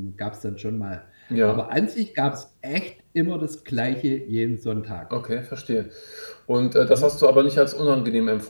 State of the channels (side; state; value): both; inverted; correlation -1.00